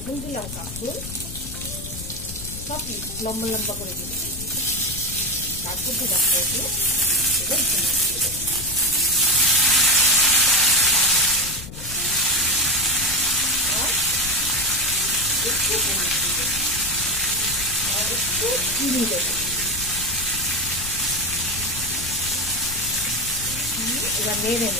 দিলাম কাঁকরোল, সব লম্বা লম্বা করে দিয়ে দেবো। তারপর দিলাম পটল, এবার ঝিঙে দিয়ে দেবো। আর একটু হলুদ দেবো আর একটু চিনি দেবো। এবার নেড়ে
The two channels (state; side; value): noise; left; rumble, 11 dB below the sound